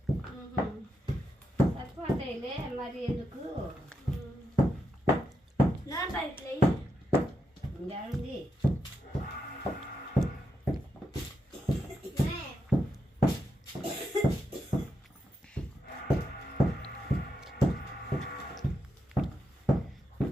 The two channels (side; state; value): both; normal; correlation 0.84